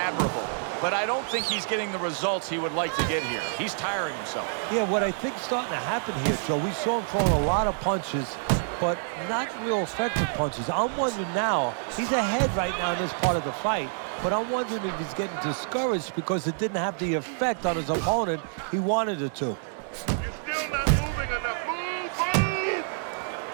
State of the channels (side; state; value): left; silent; digital silence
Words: but I don't think he's getting the results he would like to get here. He's tiring himself. Yeah, what I think's starting to happen here, Joe, we saw him throwing a lot of punches, but not real effective punches. I'm wondering now, he's ahead right now in this part of the fight, but I'm wondering if he's getting discouraged because it didn't have the effect on his opponent he wanted it to.